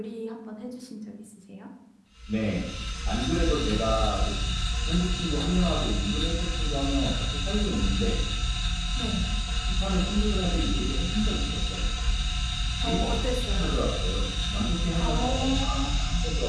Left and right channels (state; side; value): identical; both; correlation 1.00